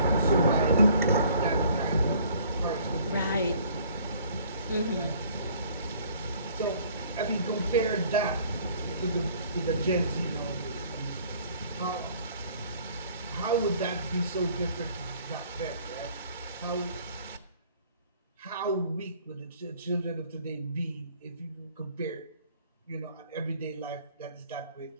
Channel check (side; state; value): both; inverted; correlation -0.56